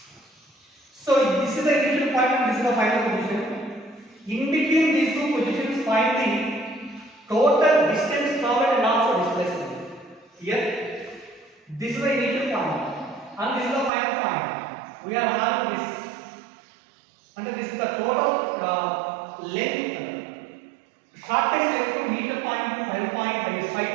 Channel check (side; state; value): left; drops out; at 13.9 s